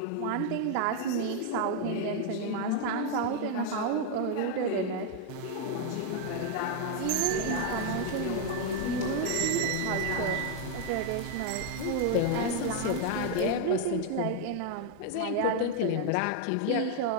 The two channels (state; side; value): different; both; correlation 0.00